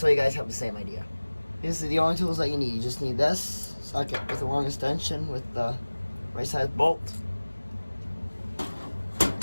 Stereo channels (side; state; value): both; inverted; correlation -1.00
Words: the same idea. These are the only tools that you need. You just need this socket with a long extension with the right size bolt.